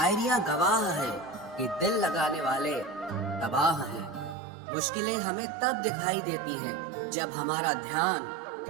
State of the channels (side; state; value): left; drops out; at 4.4 s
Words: गवाह है कि दिल लगाने वाले तबाह हैं। मुश्किलें हमें तब दिखाई देती हैं जब हमारा ध्यान